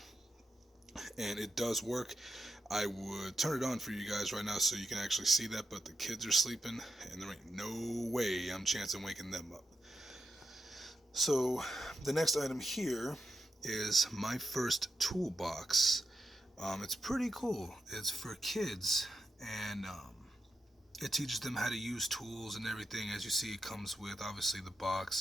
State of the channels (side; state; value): both; normal; correlation 0.87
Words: And it does work. I would turn it on for you guys right now so you can actually see that, but the kids are sleeping, and there ain't no way I'm chancing waking them up. So the next item here is my first toolbox. It's pretty cool. It's for kids, and it teaches them how to use tools and everything. As you see, it comes with obviously the